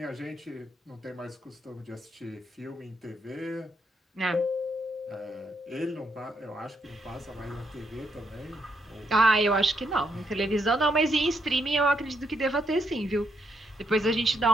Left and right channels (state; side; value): normal; both; correlation 0.77